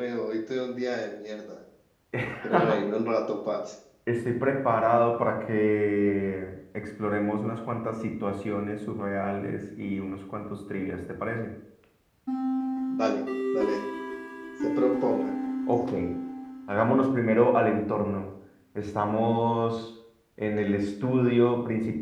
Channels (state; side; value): identical; both; correlation 1.00